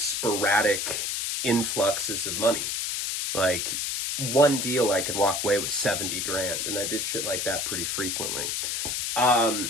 influxes of money. Like one deal I could walk away with 70 grand, and I did shit like that pretty frequently.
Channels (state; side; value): noise; left; hiss, 1 dB below the sound